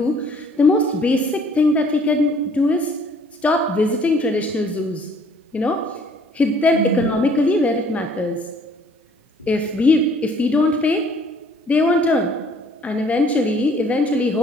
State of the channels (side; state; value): both; normal; correlation 0.58